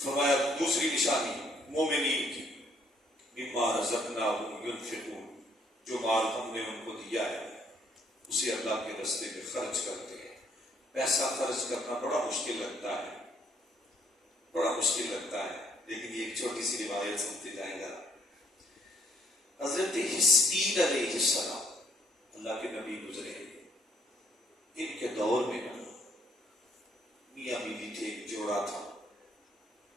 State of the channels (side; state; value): both; normal; correlation 0.67